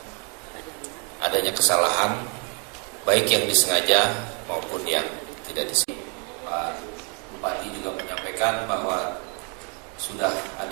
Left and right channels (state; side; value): quieter; left; 36.5 dB